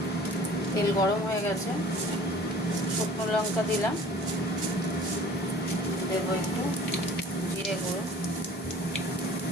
তেল গরম হয়ে গেছে, শুকনো লঙ্কা দিলাম, দেবো একটু জিরে গুঁড়ো,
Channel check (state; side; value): normal; both; correlation 0.48